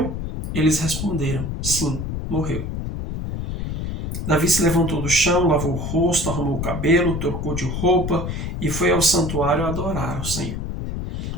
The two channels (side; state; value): left; noise; rumble, 4 dB below the sound